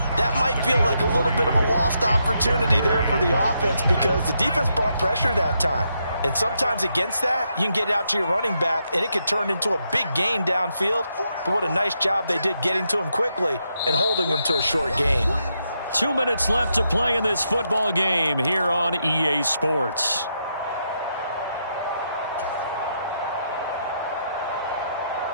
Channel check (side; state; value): both; inverted; correlation -0.80